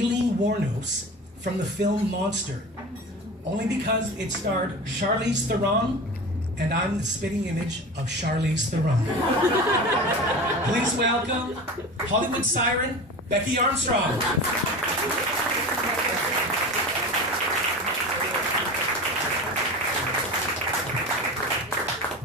Wuornos from the film Monster, only because it starred Charlize Theron, and I'm the spitting image of Charlize Theron. Please welcome Hollywood siren, Becky Armstrong.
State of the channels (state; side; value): normal; both; correlation 0.31